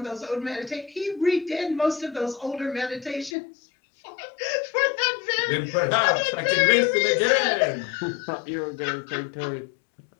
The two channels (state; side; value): drops out; right; at 3.4 s